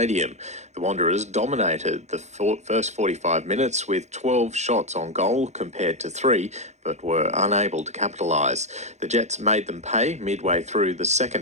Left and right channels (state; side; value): late; left; 0.33 ms